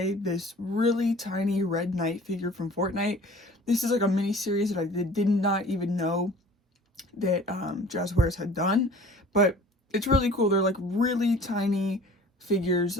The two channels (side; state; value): both; normal; correlation 0.47